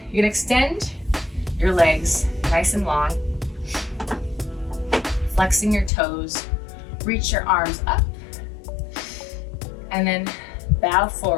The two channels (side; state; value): right; drops out; at 5.9 s